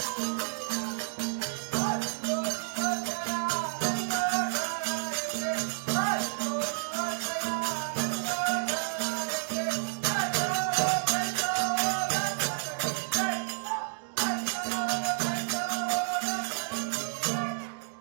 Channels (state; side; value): silent; left; digital silence